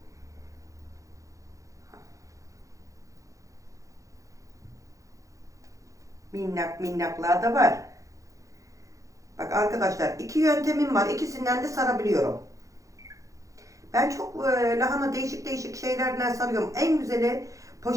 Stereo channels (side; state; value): left; late; 0.16 ms